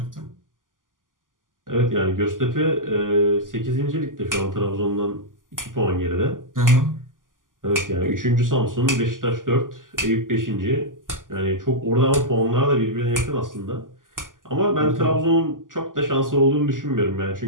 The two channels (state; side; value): late; left; 0.89 ms